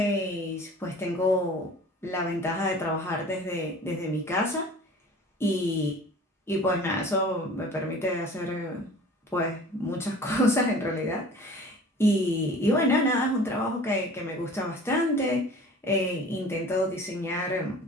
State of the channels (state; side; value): normal; both; correlation 0.44